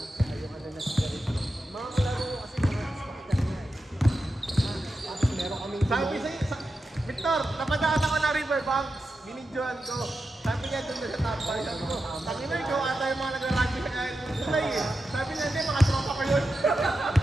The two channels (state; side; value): normal; both; correlation 0.90